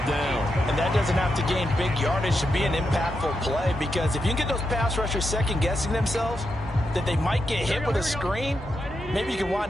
down. And that doesn't have to gain big yardage to be an impactful play, because if you can get those pass rushers second-guessing themselves, that they might get hit with a screen, maybe you can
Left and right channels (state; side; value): normal; both; correlation 0.85